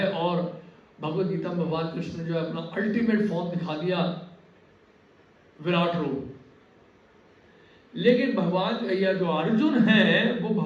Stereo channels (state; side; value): identical; both; correlation 1.00